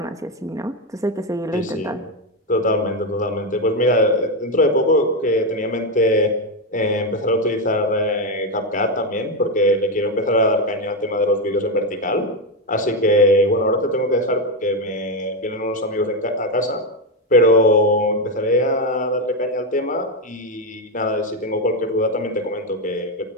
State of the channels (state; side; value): normal; both; correlation 0.08